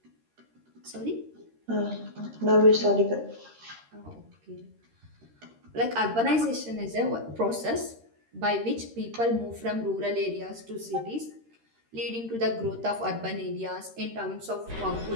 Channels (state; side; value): late; left; 13 ms